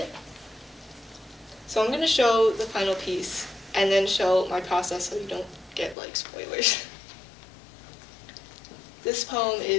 So I'm going to show the final piece and then show my process so you don't get spoilers. This poem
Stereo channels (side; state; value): right; drops out; at 6.0 s